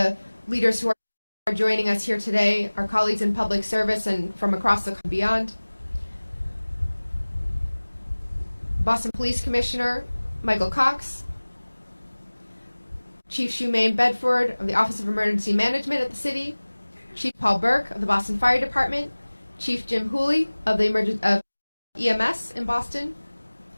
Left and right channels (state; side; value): inverted; both; correlation -1.00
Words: leaders who are joining us here today, our colleagues in public service and from across the beyond. Boston Police Commissioner Michael Cox, Chief Shumaine Bedford of the Office of Emergency Management at the city, Chief Paul Burke of the Boston Fire Department, Chief Jim Hooley of the EMS in Boston,